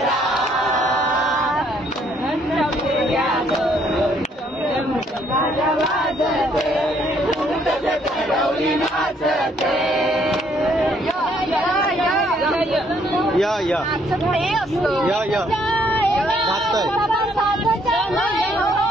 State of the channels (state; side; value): normal; both; correlation 0.67